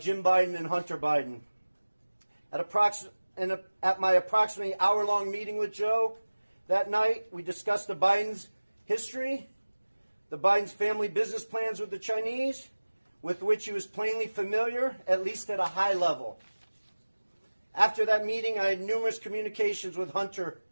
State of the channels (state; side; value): inverted; both; correlation -1.00